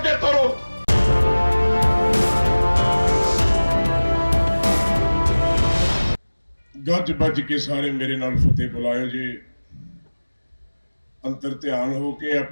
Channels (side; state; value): both; inverted; correlation -1.00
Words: ਤੋਰੋ। ਗੱਜ ਵੱਜ ਕੇ ਸਾਰੇ ਮੇਰੇ ਨਾਲ ਫਤਿਹ ਬੁਲਾਇਓ ਜੀ। ਅੰਤਰ ਧਿਆਨ ਹੋ ਕੇ